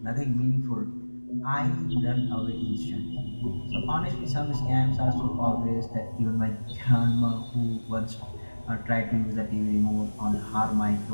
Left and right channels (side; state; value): both; inverted; correlation -1.00